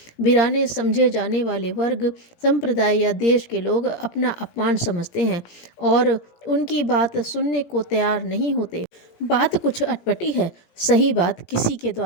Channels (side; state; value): right; late; 17 ms